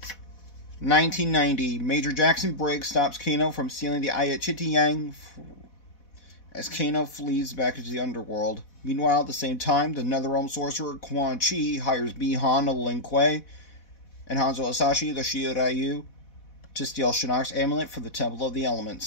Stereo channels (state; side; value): late; right; 4.1 ms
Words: 1990. Major Jackson Briggs stops Kano from stealing the eye at Chitiyang as Kano flees back into the underworld. Meanwhile, at the same time, the Netherrealm sorcerer Quan Chi hires Bi-Han of Lin Kuei and Hanzo Asashi, the Shiryu, to steal Shinnok's amulet for the Temple of the